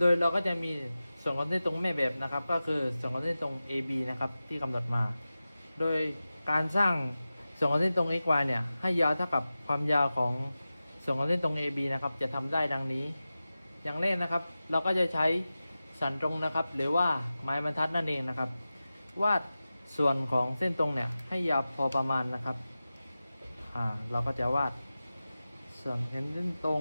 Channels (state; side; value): inverted; both; correlation -0.95